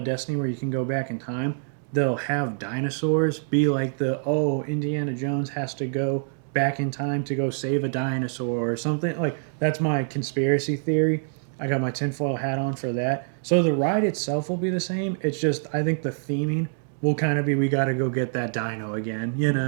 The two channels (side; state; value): left; silent; digital silence